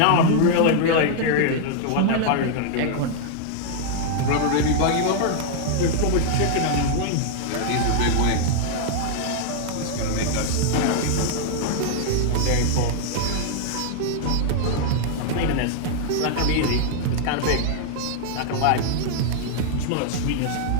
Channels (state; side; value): different; both; correlation 0.00